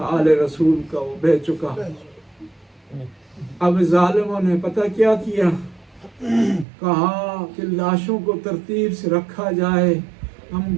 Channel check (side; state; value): left; drops out; at 6.7 s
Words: आले रसूल का वो बह चुका। अब जालिमों ने पता क्या किया, कहा कि लाशों को तरतीब से रखा जाए, हम